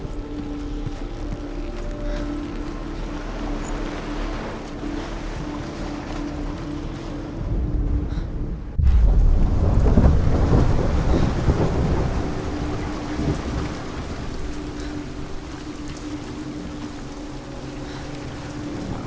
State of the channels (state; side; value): identical; both; correlation 1.00